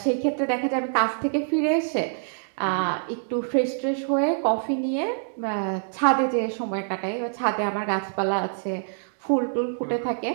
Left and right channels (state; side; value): silent; left; digital silence